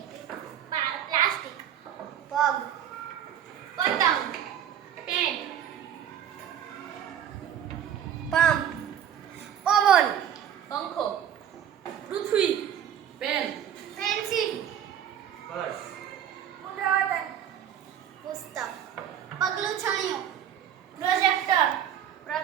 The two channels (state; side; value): quieter; left; 9.6 dB